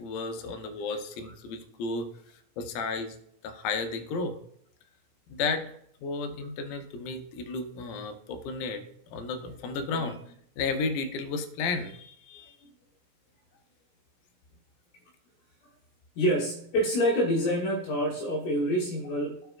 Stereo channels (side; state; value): right; late; 17 ms